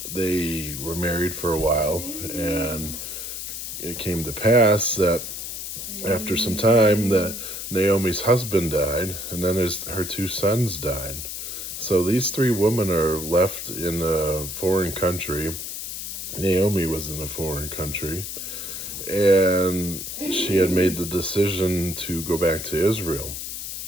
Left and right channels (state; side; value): noise; left; hiss, 7 dB below the sound